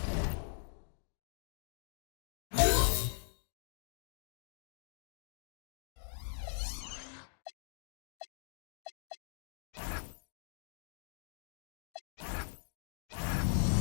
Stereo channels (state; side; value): silent; right; digital silence